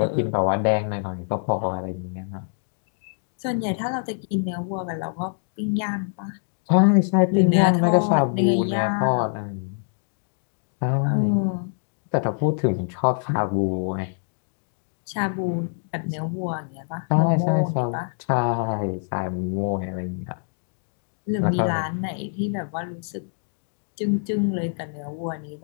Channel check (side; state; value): right; silent; digital silence